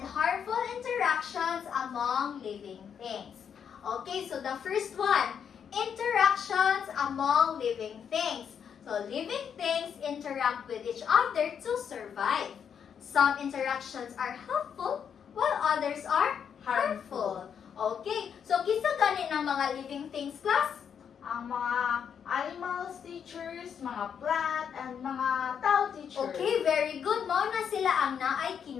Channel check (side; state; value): right; quieter; 7.7 dB